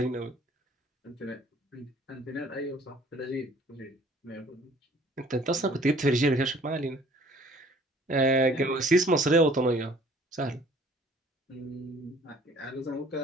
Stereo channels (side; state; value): both; normal; correlation 0.54